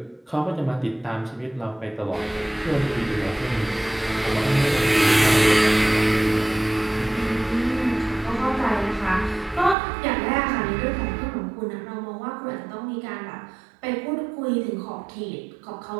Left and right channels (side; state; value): left; drops out; at 9.8 s